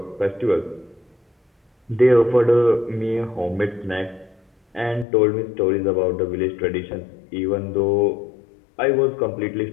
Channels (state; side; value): drops out; right; at 5.1 s